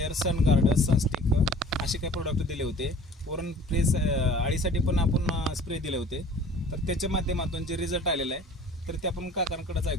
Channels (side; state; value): both; normal; correlation 0.48